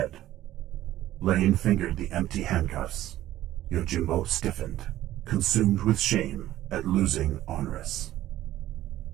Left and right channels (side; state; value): left; quieter; 14.1 dB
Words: Lane fingered the empty handcuffs. Yojimbo stiffened, consumed with shame at losing Honorius.